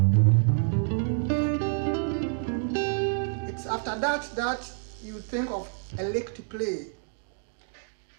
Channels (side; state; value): left; silent; digital silence